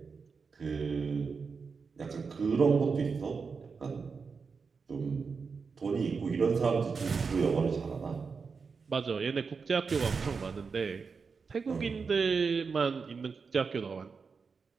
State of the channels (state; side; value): quieter; left; 5.2 dB